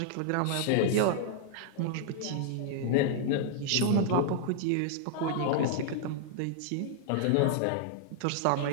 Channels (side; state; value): both; different; correlation -0.01